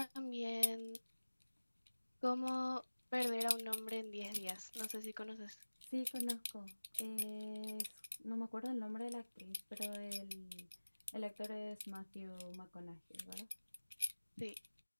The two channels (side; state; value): both; inverted; correlation -1.00